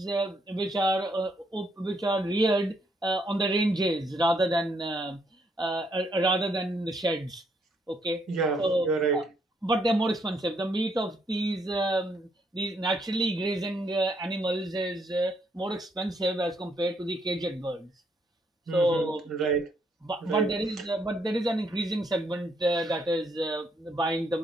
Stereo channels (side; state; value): both; normal; correlation 0.73